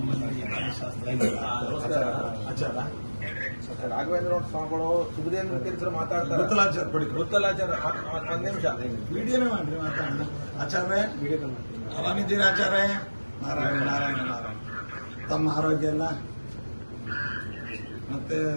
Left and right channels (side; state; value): both; inverted; correlation -1.00